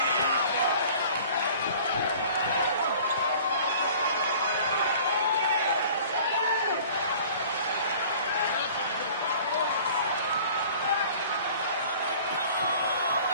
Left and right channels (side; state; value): both; inverted; correlation -0.47